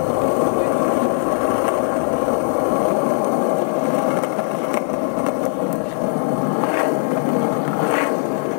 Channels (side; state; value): right; silent; digital silence